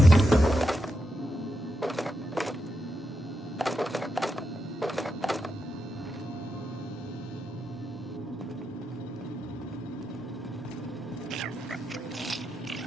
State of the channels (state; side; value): normal; both; correlation 0.86